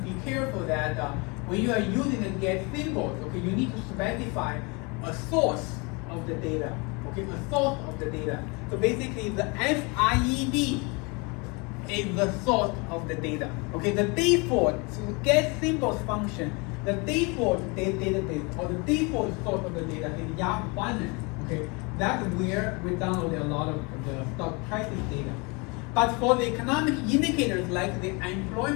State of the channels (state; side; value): quieter; right; 29.6 dB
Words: be careful that when you are using the get symbols, okay, you need to specify a source of the data. Okay, a source of the data. So basically, the FRED is the source of the data. Okay, the default get symbols function, the default database or the default source of the data is Yahoo Finance. Okay, that's where we download a lot of the stock prices data. But for the economic indicators like the